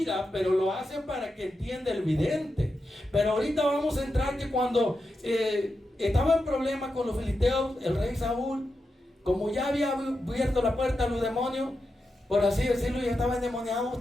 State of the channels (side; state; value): both; normal; correlation 0.88